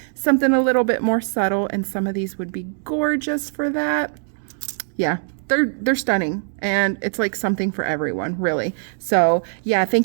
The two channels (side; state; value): left; silent; digital silence